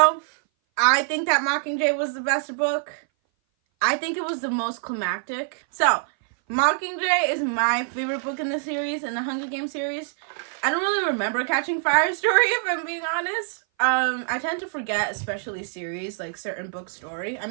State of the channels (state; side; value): silent; left; 58 dB below the other